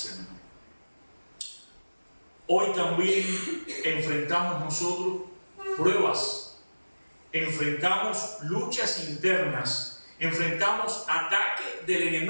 Menor. Hoy también enfrentamos nosotros pruebas, enfrentamos luchas internas, enfrentamos ataques del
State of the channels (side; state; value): both; inverted; correlation -1.00